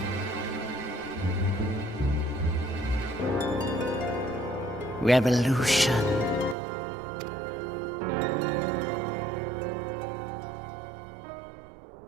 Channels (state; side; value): drops out; left; at 6.6 s